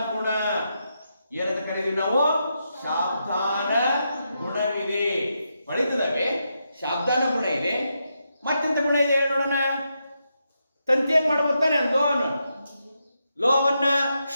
ಗುಣ. ಏನಂತ ಕರೀತೀವಿ ನಾವು? ಶಾಬ್ದಾನ ಗುಣವಿದೆ. ಹೊಳಿತದವೆ, ಶಾಬ್ದಾನ ಗುಣ ಇದೆ. ಮತ್ತೆಂತ ಗುಣ ಇದೆ ಹೇಳಿ ನೋಡೋಣ. ತಂತಿ ಏನ್ ಮಾಡ್ಬೋತಾನೆ? ಲೋಹವನ್ನ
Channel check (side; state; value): both; inverted; correlation -0.84